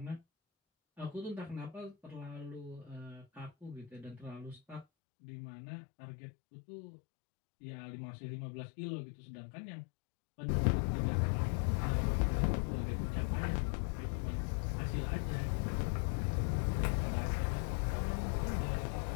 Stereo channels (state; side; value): drops out; right; at 4.9 s